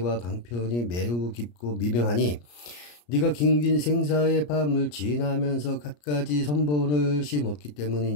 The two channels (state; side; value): late; right; 34 ms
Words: 방편이 매우 깊고 미명하니 네가 긴긴 생사의 밤을 지나면서 갖가지 선본을 심었기